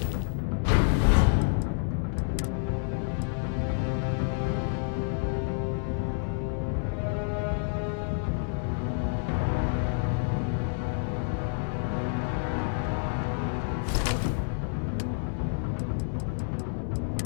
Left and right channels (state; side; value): silent; right; 59 dB below the other